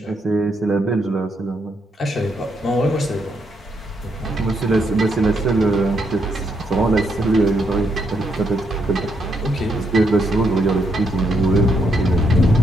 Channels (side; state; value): both; normal; correlation 0.77